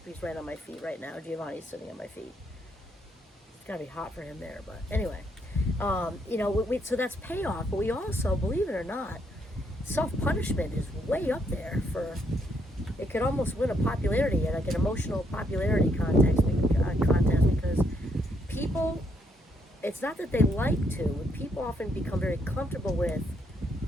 He's right on my feet right now. Giovanni's sitting on my feet. It's gotta be hot for him there, but anyway. So that's payoff, but we also, believe it or not, self-punishment is way up there it could almost win a popularity, like an emotional popularity contest, because people, it's not that they like to, people often become very comfortable with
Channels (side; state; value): both; normal; correlation 0.74